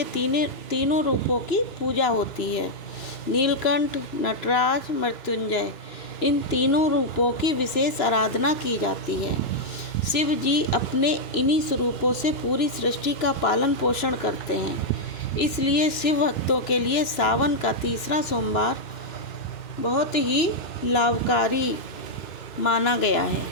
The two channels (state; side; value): late; right; 2.9 ms